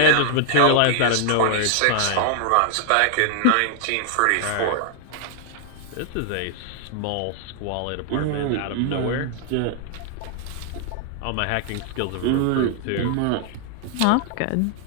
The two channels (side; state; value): both; different; correlation 0.00